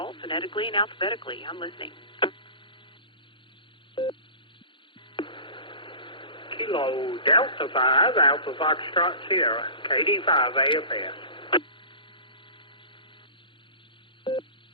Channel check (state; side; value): late; right; 0.24 ms